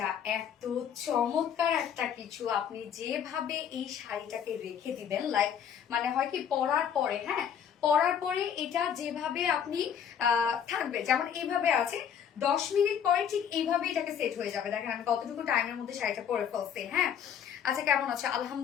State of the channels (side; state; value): right; quieter; 8.4 dB